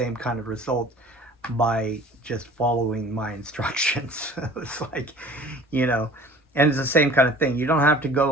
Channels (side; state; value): both; normal; correlation 0.46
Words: kind of result by just following my instructions. It's like, and it's the same kind of thing. You don't have to